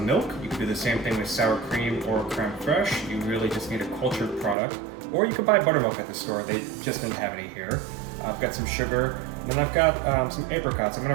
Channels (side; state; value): left; drops out; at 4.5 s